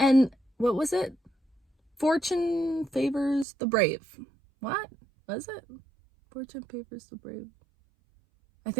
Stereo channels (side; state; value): left; drops out; at 3.5 s